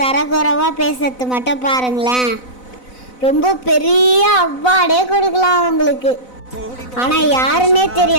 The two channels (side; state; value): right; late; 4.0 ms